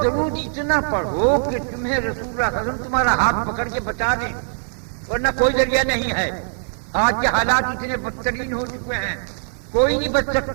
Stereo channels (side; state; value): left; silent; digital silence